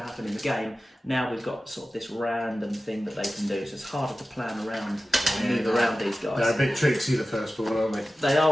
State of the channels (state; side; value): normal; both; correlation 0.95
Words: to happen in the game. Now we've got sort of this random thing that they can do, so it's harder to plan around and move around these guys. They're a bit tricksy, the firstborn, aren't they? They